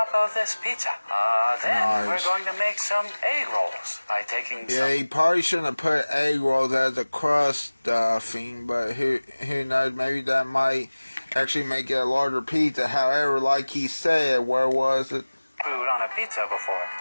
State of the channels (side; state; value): both; inverted; correlation -1.00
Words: of this pizza. Then we're going to make some egg rolls by taking some... Yeah, he probably shouldn't have put egg rolls as a crust stuffing, but who knows, maybe that might actually make it a larger pizza. However, like he said, where was it? Food on a pizza before.